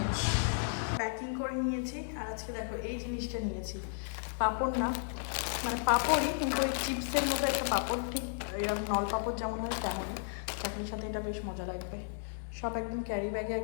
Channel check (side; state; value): right; silent; digital silence